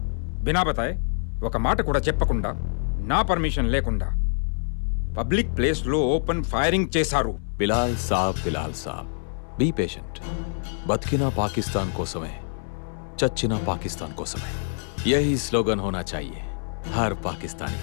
बिना बताए ఒక మాట కూడా చెప్పకుండా నా పర్మిషన్ లేకుండా పబ్లిక్ ప్లేస్ లో ఓపెన్ ఫైరింగ్ చేశారు. బిలాల్ సాబ్ బీ పేషెంట్. బతికినా పాకిస్తాన్ కోసమే, చచ్చినా పాకిస్తాన్ కోసమే. యహీ స్లోగన్ హోనా చాహియే హర్ పాకిస్తానీ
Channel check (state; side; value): silent; right; 61 dB below the other